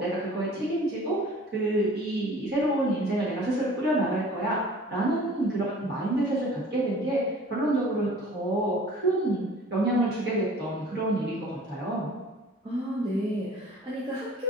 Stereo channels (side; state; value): both; normal; correlation 0.48